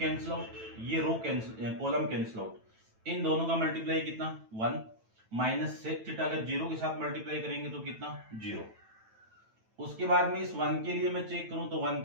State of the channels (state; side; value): late; left; 9.1 ms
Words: आउट, ये रो कैंसिल, कॉलम कैंसिल आउट। इन दोनों का मल्टीप्लाई कितना 1 माइनस sec थीटा का जीरो के साथ मल्टीप्लाई करेंगे तो कितना 0। उसके बाद में इस 1 के लिए मैं चेक करूं तो 1